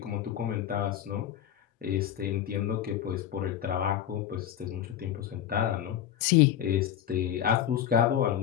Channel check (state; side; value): quieter; right; 10.5 dB